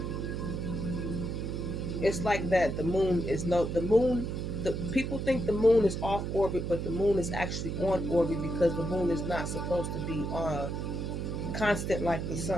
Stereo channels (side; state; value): right; noise; hum, 3 dB below the sound